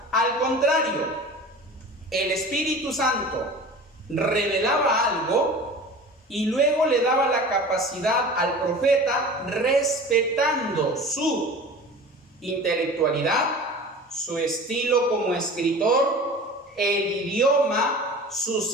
Al contrario, el Espíritu Santo revelaba algo y luego le daba la capacidad al profeta, respetando su intelectualidad, su estilo como escritor, el idioma,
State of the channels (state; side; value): normal; both; correlation 0.38